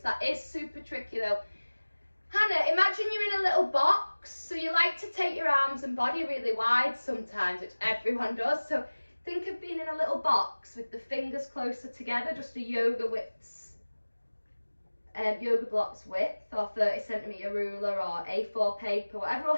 That is super tricky though. Hannah, imagine you're in a little box. So you like to take your arms and body really wide sometimes, which everyone does. So think of being in a little box with the fingers closer together, just a yoga blocks width, or 30cm ruler or A4 paper, whatever will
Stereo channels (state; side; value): inverted; both; correlation -1.00